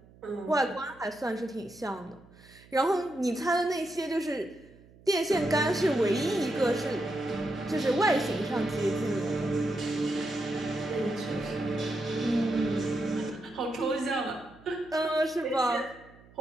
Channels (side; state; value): right; noise; hum, 25 dB below the sound